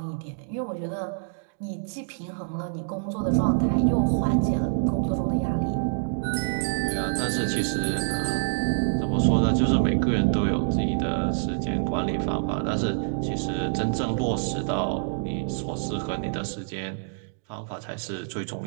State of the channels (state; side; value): silent; left; digital silence